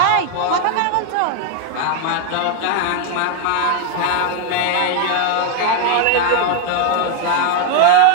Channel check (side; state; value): both; different; correlation 0.00